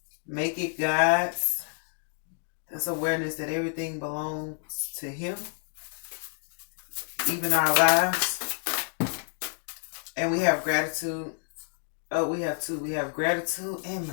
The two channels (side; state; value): right; silent; 59 dB below the other